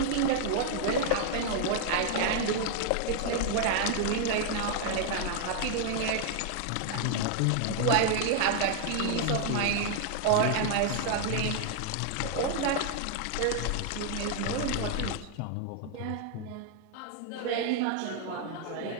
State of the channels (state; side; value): different; both; correlation 0.00